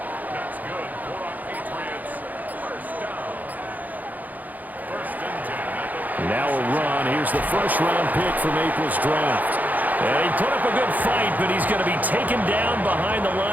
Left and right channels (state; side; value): late; left; 0.081 ms